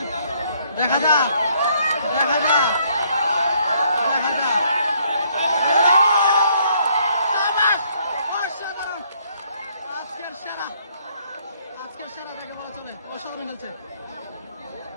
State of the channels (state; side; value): inverted; both; correlation -0.67